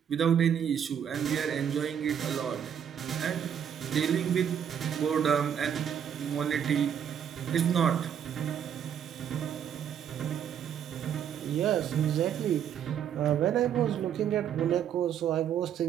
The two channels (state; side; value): quieter; left; 8.8 dB